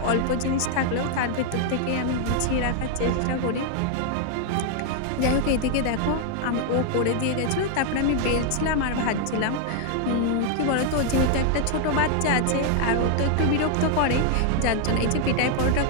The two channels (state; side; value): different; both; correlation 0.00